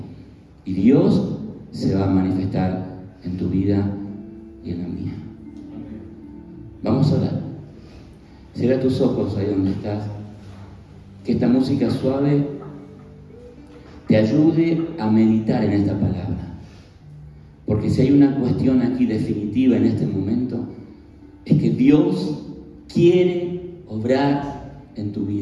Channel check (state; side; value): identical; both; correlation 1.00